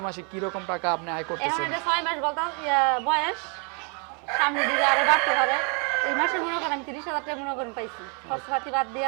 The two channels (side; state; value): left; quieter; 36.4 dB